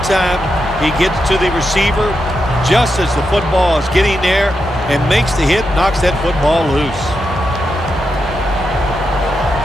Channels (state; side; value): normal; both; correlation 0.86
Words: time. He gets to the receiver just as the football is getting there and makes the hit, knocks that football loose.